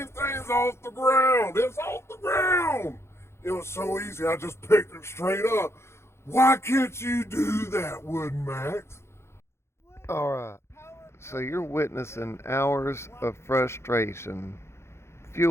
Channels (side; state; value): right; late; 0.13 ms